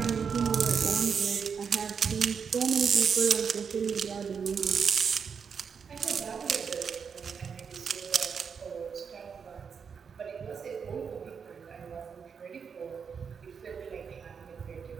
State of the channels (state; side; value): quieter; left; 6.4 dB